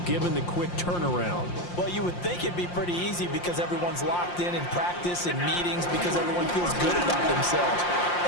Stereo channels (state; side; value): late; right; 5.7 ms